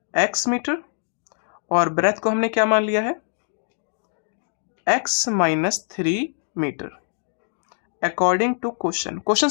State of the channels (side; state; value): right; silent; digital silence